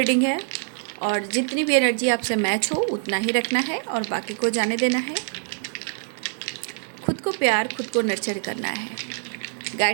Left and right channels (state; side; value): silent; left; 60 dB below the other